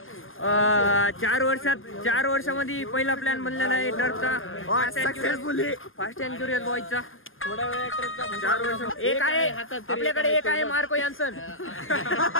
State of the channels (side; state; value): right; late; 0.59 ms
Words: 4 वर्षामध्ये पहिला प्लॅन बनलेला आहे टर्फचा फास्ट अँड क्युरियस बॉयचा. थोड्या वेळ टर्फचा 4 वर्ष. एक आहे आपल्याकडे, एक आहे मार्को यान्सन.